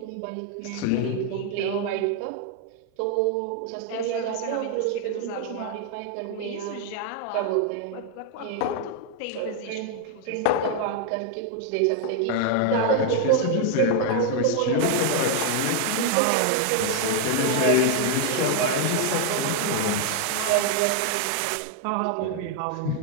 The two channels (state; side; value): different; both; correlation 0.00